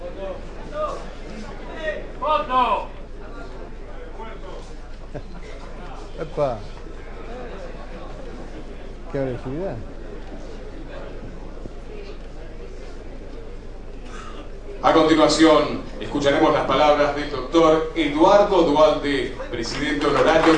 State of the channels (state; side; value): identical; both; correlation 1.00